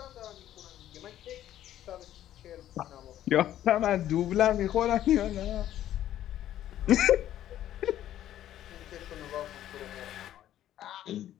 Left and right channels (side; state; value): right; quieter; 12.1 dB